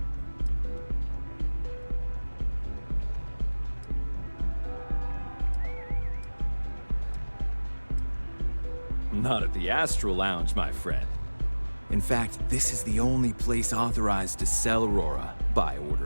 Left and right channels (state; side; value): inverted; both; correlation -1.00